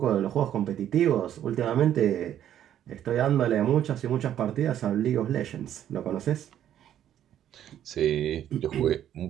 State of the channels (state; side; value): quieter; left; 10.8 dB